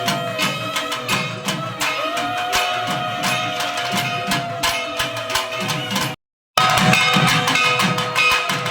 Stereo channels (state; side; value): identical; both; correlation 1.00